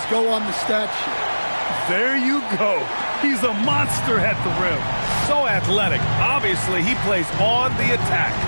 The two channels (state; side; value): inverted; both; correlation -1.00